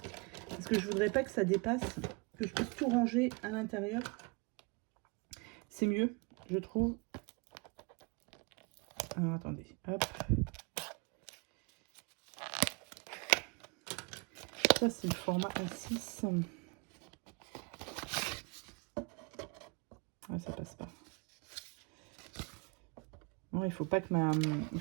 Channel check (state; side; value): quieter; left; 30.9 dB